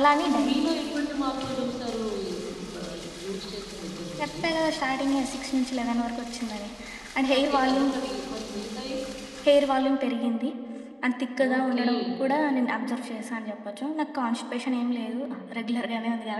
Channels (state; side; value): identical; both; correlation 1.00